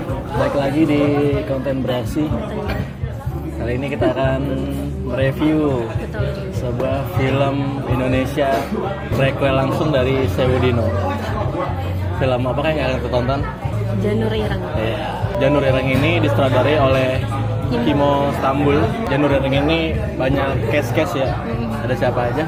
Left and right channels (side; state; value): both; identical; correlation 1.00